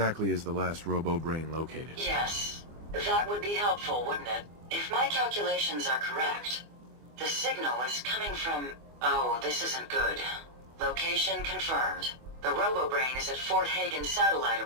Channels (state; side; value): late; left; 24 ms